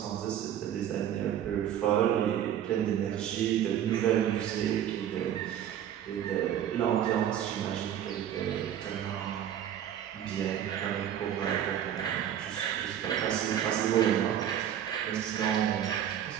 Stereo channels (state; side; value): quieter; left; 10.3 dB